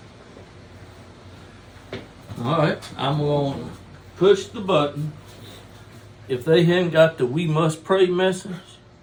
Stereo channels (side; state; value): both; identical; correlation 1.00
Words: you. All right, I'm going to push the button. If they haven't got the "we must pray" message,